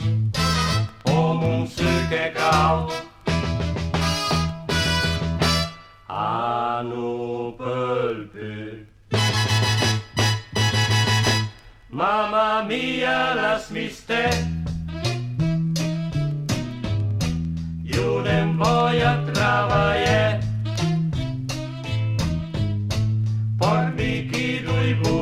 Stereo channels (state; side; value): identical; both; correlation 1.00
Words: oh musse che cald. Anu pelpe. Mamma mia, las miste. Io non voglio travagliare. Pormi chi lui